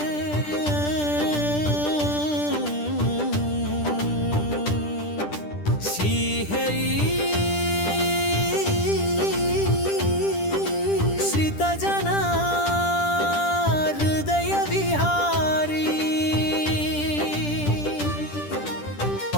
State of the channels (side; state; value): right; late; 10 ms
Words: శ్రీహరి శ్రితజనా హృదయ విహారీ